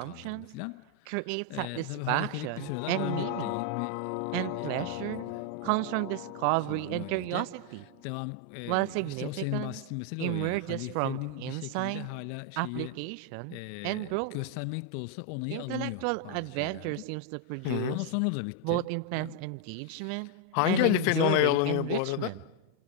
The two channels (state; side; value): different; both; correlation 0.00